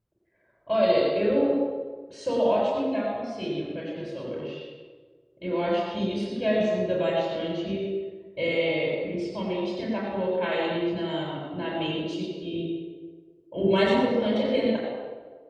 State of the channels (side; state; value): both; identical; correlation 1.00